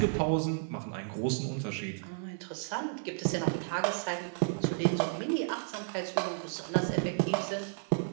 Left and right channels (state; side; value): silent; left; 56 dB below the other